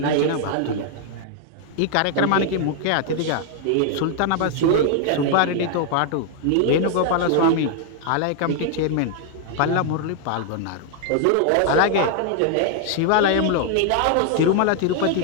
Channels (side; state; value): both; different; correlation 0.00